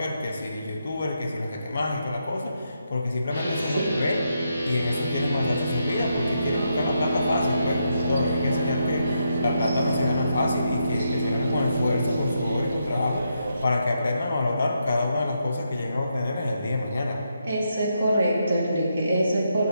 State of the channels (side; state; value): both; inverted; correlation -0.81